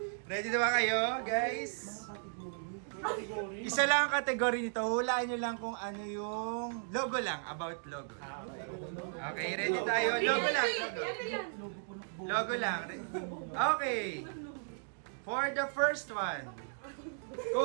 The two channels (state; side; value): silent; left; digital silence